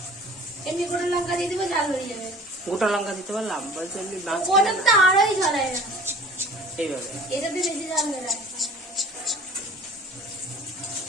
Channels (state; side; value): normal; both; correlation 0.45